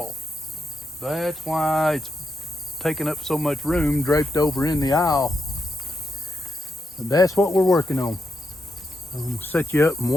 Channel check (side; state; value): both; normal; correlation 0.83